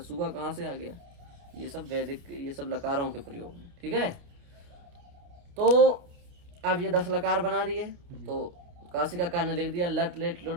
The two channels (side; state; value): left; late; 29 ms